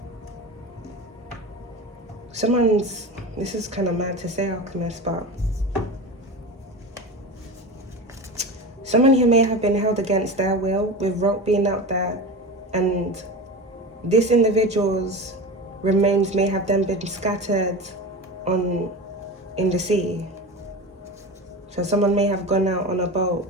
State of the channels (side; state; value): both; normal; correlation 0.27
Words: This is kind of mad to say, Alchemist, but someone here may have been held against their will with rope being out there, and this individual's remains may have then been scattered in the sea. So someone may have gone out on a boat